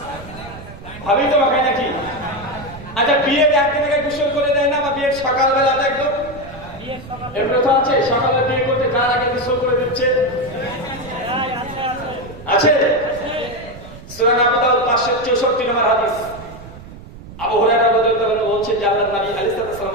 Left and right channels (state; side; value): noise; right; rumble, 16 dB below the sound